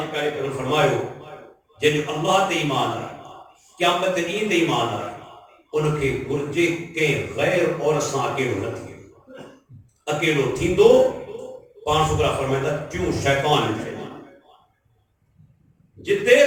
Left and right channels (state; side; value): identical; both; correlation 1.00